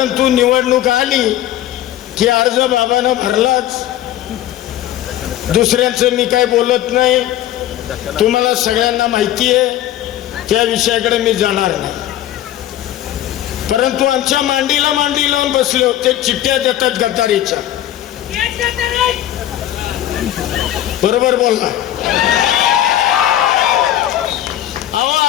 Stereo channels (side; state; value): right; quieter; 12.8 dB